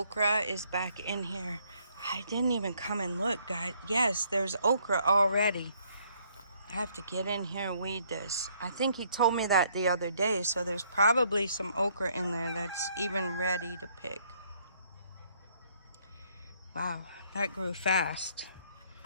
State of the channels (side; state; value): both; inverted; correlation -0.67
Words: is back in here. I didn't even come and look, guys. Yes, there's okra already. I have to get in here and weed this. I think he told me that the other day, so there's probably some okra in there that's even ready to pick. Wow, that grew fast.